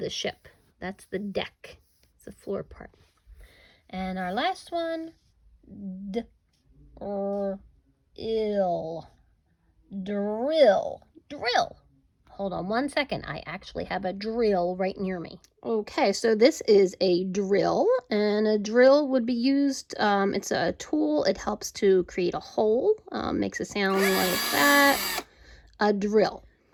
ship. That's the deck. It's the floor part. And our last one, drill. Hold on one second. I actually have a drill right near me. Okay, so this is a drill, and a drill would be used, it's a tool. It helps to create a hole, makes a sound like that, a drill.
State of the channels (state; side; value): identical; both; correlation 1.00